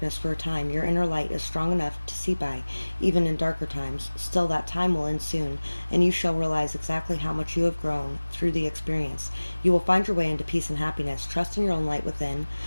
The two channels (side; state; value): both; inverted; correlation -1.00